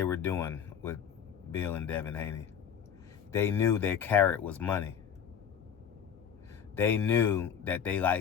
were doing with Bill and Devin Haney. They knew their carrot was money. They knew that they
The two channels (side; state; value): right; quieter; 8.1 dB